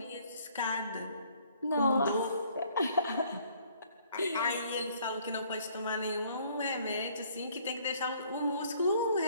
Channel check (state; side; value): inverted; both; correlation -0.61